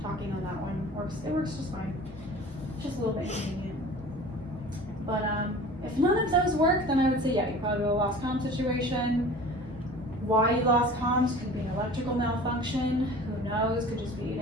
talking on that one works. It works just fine. It's just a little bit inconvenient. But if none of those work, then I would say yeah, you probably have a lost comm situation. Why you lost comms could be an electrical malfunction. Who knows? Could just be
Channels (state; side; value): normal; both; correlation 0.42